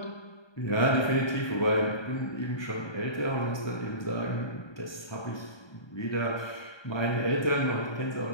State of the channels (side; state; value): right; late; 1.2 ms